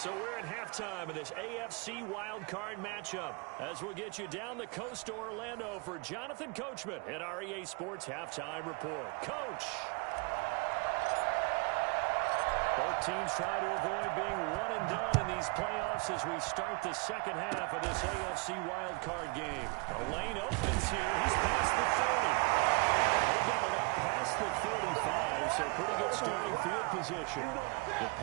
we're at halftime of this AFC Wildcard matchup as we'll get you down the coast to Orlando for Jonathan Coachman at our EA Sports Halftime Report. Coach! Both teams try to avoid being one and done in these playoffs as we start the second half of this AFC Wildcard game. The lane opens here. He's past the 30. They got it up past the 35, so pretty good starting field position. The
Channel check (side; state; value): left; quieter; 30.7 dB